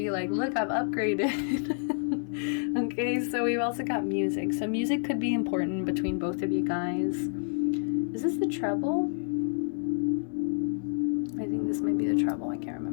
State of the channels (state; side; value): silent; right; 59 dB below the other